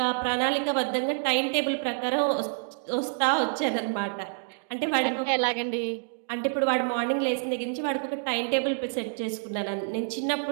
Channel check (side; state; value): left; silent; digital silence